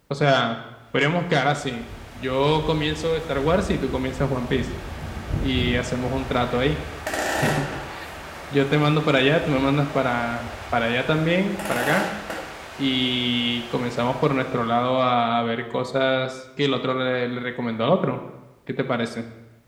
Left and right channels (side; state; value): both; identical; correlation 1.00